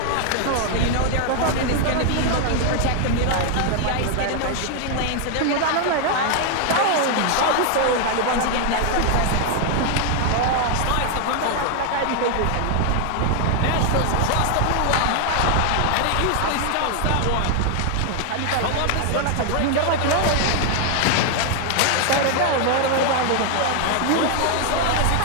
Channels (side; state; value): both; different; correlation 0.00